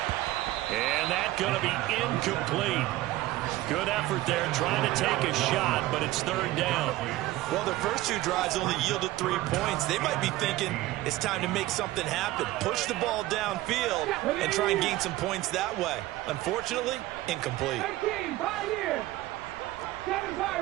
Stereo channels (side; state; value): left; quieter; 17.0 dB